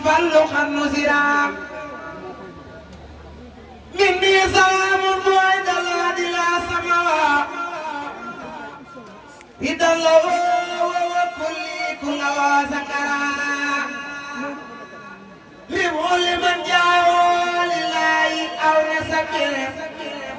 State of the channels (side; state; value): both; identical; correlation 1.00